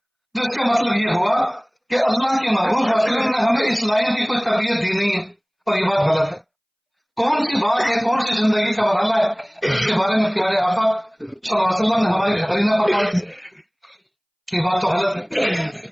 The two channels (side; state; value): both; identical; correlation 1.00